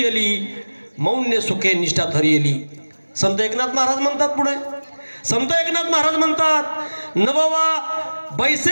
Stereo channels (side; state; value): both; inverted; correlation -1.00